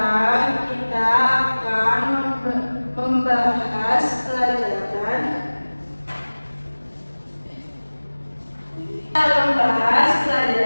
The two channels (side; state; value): both; inverted; correlation -1.00